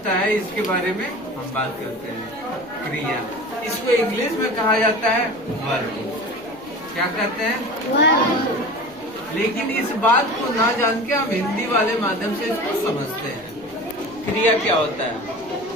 है इसके बारे में हम बात करते हैं। क्रिया, इसको इंग्लिश में कहा जाता है वर्ब। क्या कहते हैं? वर्ब। लेकिन इस बात को ना जान के हम हिंदी वाले माध्यम से इसको समझते हैं। क्रिया क्या होता है?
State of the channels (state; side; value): noise; left; rumble, 28 dB below the sound